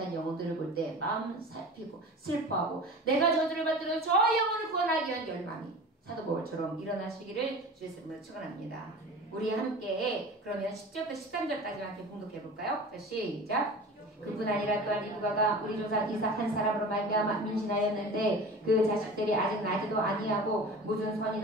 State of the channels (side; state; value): both; normal; correlation 0.36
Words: 영혼들을 볼 때 마음 살피고 슬퍼하고 내가 저주를 받들어 저 영혼을 구원하기 위한 열망이 사도 바울처럼 일어나시기를 주의 이름으로 축원합니다. 우리 함께 그러면 10절부터 13절까지 함께 봉독해 볼까요? 자, 시작. 그뿐 아니라 또한 리브가가 우리 조상 이삭 한 사람으로 말미암아 임신하였는데 그 자식들이 아직 나지도 아니하고 무슨